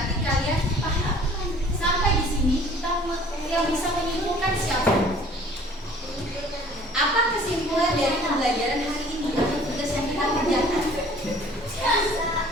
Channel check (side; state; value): both; normal; correlation 0.52